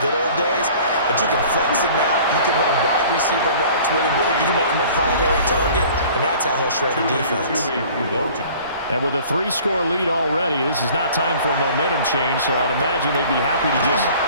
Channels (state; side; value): inverted; both; correlation -0.48